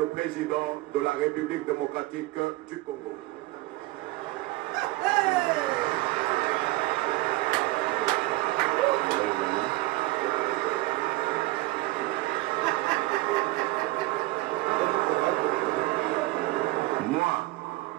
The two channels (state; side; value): quieter; left; 20.2 dB